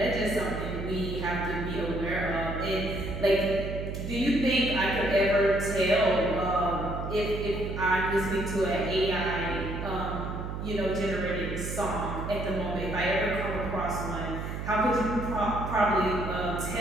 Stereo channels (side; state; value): right; noise; hum, 5 dB below the sound